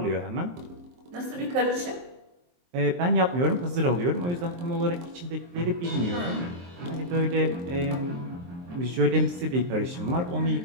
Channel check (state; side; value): late; left; 23 ms